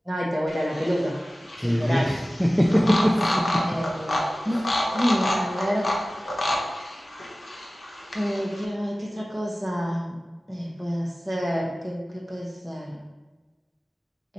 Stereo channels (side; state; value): both; normal; correlation 0.97